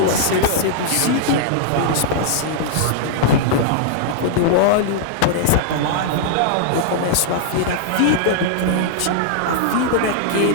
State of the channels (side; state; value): both; different; correlation -0.01